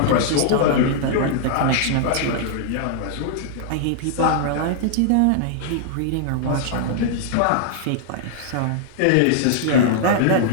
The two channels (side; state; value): both; different; correlation -0.01